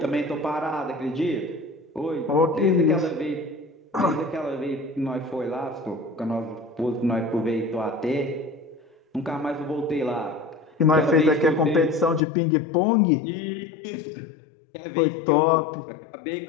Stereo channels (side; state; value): right; drops out; at 12.2 s